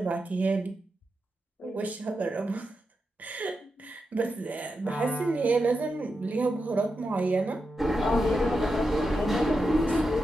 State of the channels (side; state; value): both; normal; correlation 0.88